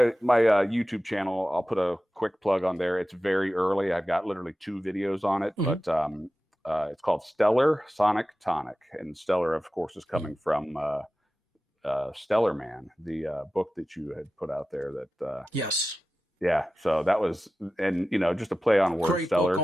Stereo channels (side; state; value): both; normal; correlation 0.94